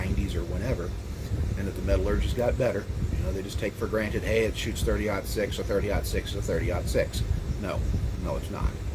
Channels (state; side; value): identical; both; correlation 1.00